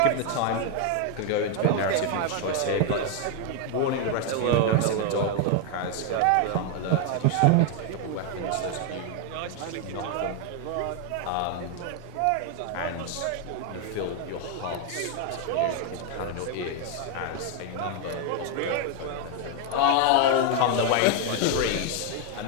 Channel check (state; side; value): different; both; correlation 0.00